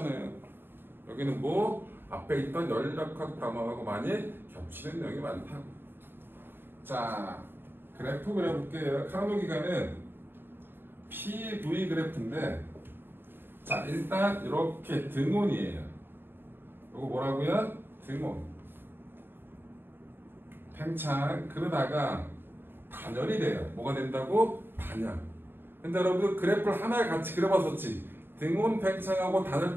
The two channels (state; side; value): late; left; 0.10 ms